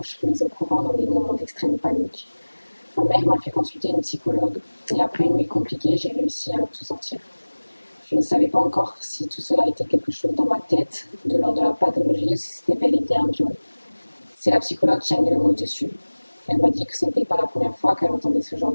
mis au courant dans des moments d'extrême panique. Ma mère m'a fait consulter une psychologue, et après une nuit compliquée, j'ai réussi à tout sortir. Je ne savais pas encore si tout cela était quelque chose dans ma tête, de l'ordre de la pathologie, ou si c'était bel et bien un viol. C'est la psychologue qui a mis le mot dessus. Elle m'a dit que ce n'était pas la première fois qu'elle entendait ce genre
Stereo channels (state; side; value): inverted; both; correlation -1.00